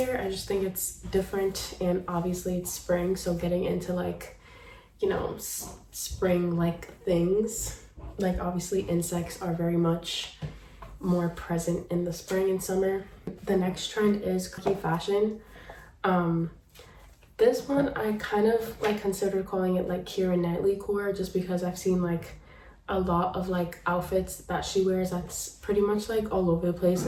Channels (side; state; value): both; identical; correlation 1.00